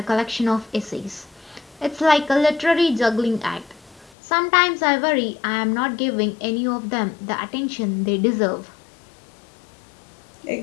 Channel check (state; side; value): drops out; right; at 4.1 s